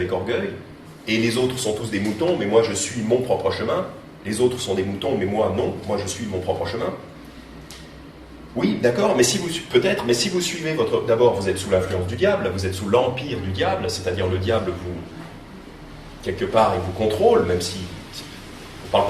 orgueil. Et les autres sont tous des moutons, mais moi je suis mon propre chemin. Les autres sont des moutons, mais moi non, moi je suis mon propre chemin. Oui, d'accord, mais si vous suivez d'abord, vous êtes sous l'influence du diable, vous êtes sous l'empire du diable, c'est-à-dire le diable quelque part, il vous contrôle, même si on ne parle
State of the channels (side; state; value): both; identical; correlation 1.00